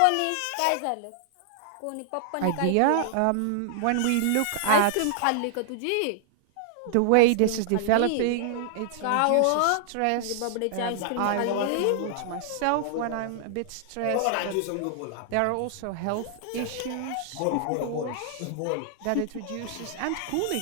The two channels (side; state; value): both; different; correlation -0.01